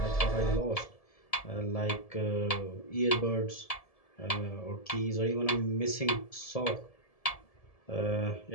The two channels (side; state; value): right; late; 1.7 ms